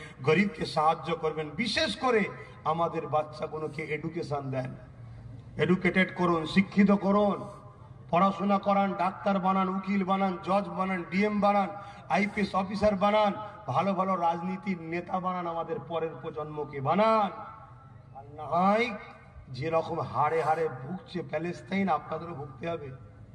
গরিবকে সাহায্য করবেন। বিশেষ করে আমাদের বাচ্চাগুলোকে এডুকেশন দেন, এডুকেটেড করুন, শিক্ষিত করুন, পড়াশোনা করান, ডাক্তার বানান, উকিল বানান, জজ বানান, ডিএম বানান, আইপিএস অফিসার বানান, ভালো ভালো রাজনীতির নেতা বানান, আমাদের পরের প্রজন্মকে বানান। আর না হয় যেরকম হাড়ে হাড়ে ভুগছে প্যালেস্তাইন, আপনাদেরও ভুগতে হবে।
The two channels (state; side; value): identical; both; correlation 1.00